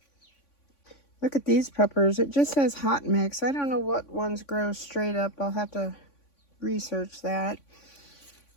Look at these peppers. It just says hot mix. I don't know what ones grow straight up. I'll have to research that.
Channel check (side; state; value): right; late; 3.5 ms